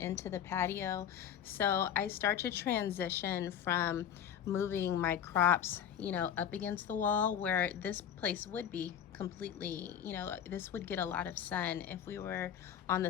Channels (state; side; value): quieter; right; 9.2 dB